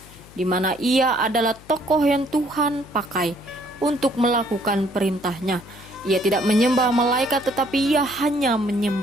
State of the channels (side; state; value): left; noise; hum, 22 dB below the sound